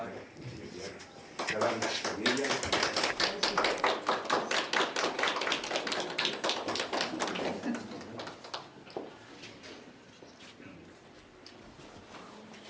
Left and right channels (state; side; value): identical; both; correlation 1.00